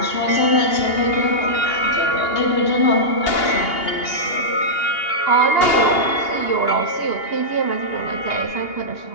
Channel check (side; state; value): right; late; 2.8 ms